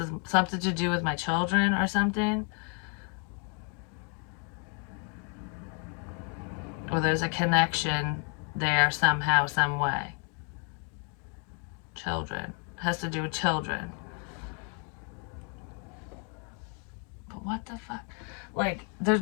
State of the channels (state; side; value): quieter; right; 39.2 dB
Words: something to do with my children or something. Or there's a connection there somehow, some way. Children. Has to do with children. But what the fuck? Like,